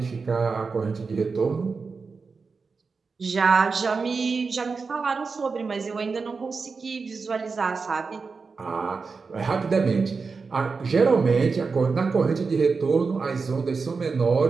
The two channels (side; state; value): left; quieter; 4.7 dB